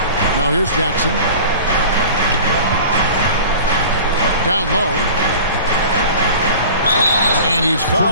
Now here's Jackson. Down low. And he's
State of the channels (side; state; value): both; inverted; correlation -0.40